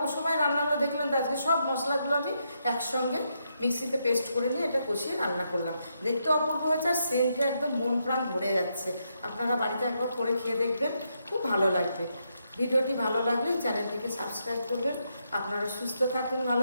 সময় রান্নাগুলো দেখলেন তো আজকে সব মশলাগুলো আমি একসঙ্গে মিক্সিতে পেস্ট করে নিয়ে এটা কষিয়ে রান্না করলাম। দেখতে অপূর্ব হয়েছে আর সেন্টে একদম মন প্রাণ ভরে যাচ্ছে। আপনারা বাড়িতে একবার করে খেয়ে দেখবেন, খুব ভালো লাগবে। ভিডিওটি ভালো লাগলে চ্যানেলটিকে সাবস্ক্রাইব করবেন। আপনারা সুস্থ থাকুন,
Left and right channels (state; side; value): inverted; both; correlation -0.80